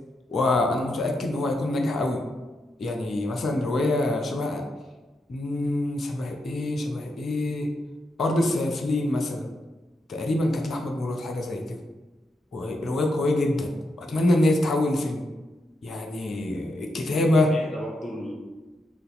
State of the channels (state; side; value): normal; both; correlation 0.83